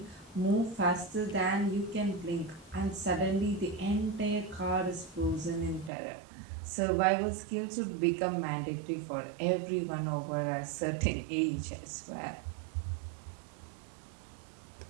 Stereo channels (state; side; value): drops out; left; at 5.9 s